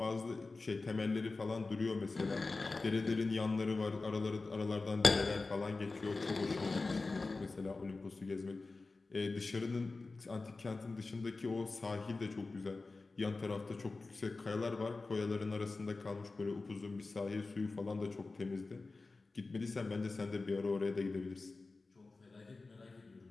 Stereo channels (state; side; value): quieter; right; 3.6 dB